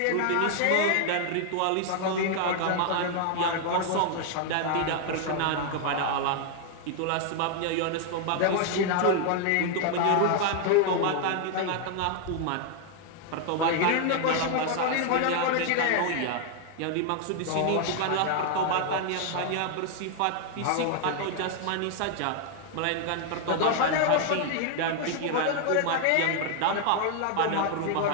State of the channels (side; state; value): both; different; correlation 0.00